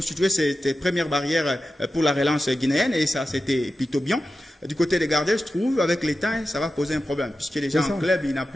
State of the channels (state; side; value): normal; both; correlation 0.92